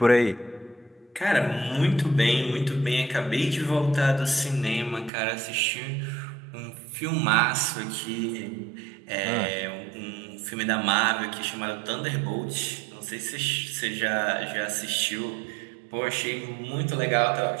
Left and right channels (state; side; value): drops out; left; at 5.1 s